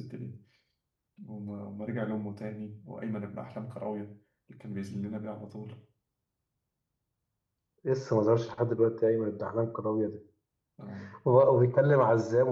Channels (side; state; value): both; identical; correlation 1.00